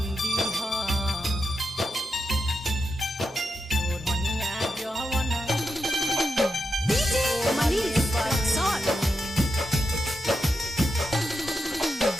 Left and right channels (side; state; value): both; normal; correlation 0.87